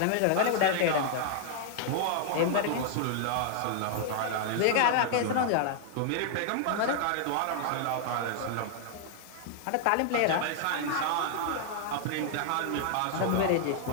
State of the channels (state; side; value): different; both; correlation -0.01